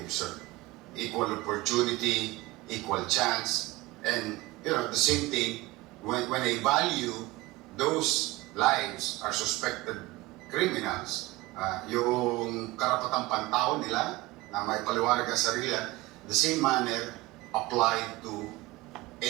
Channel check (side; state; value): left; quieter; 20.2 dB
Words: Equal opportunity, equal chance, and the same thing when I value those lives are suspected criminals, yung karapatang pantao nila na may paliwanag ang sarili, the same manner applied to